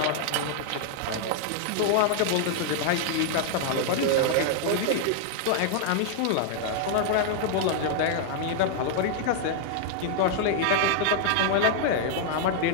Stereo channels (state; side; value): different; both; correlation -0.01